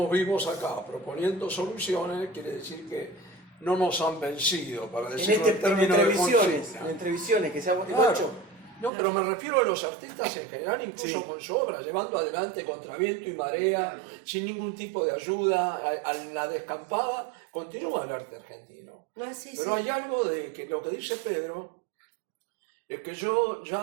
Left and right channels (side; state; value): left; drops out; at 8.9 s